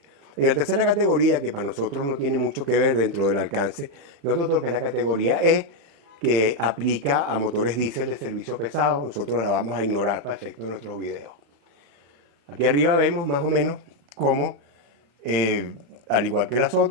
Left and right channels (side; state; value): left; late; 35 ms